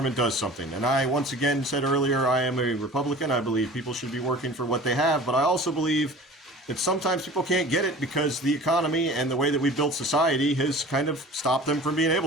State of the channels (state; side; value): normal; both; correlation 0.42